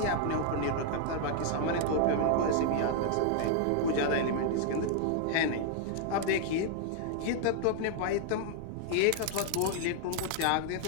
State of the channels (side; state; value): both; different; correlation 0.00